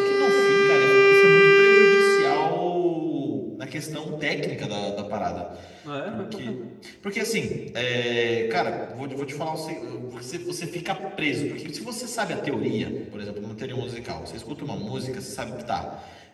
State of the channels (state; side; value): identical; both; correlation 1.00